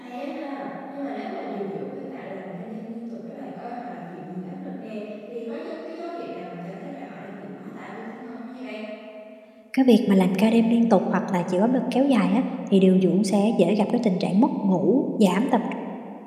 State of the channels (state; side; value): identical; both; correlation 1.00